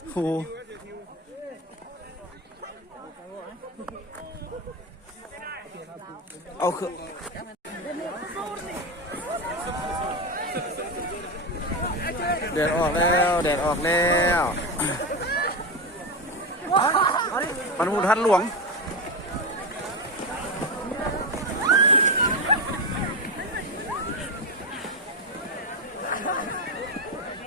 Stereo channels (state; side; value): normal; both; correlation 0.15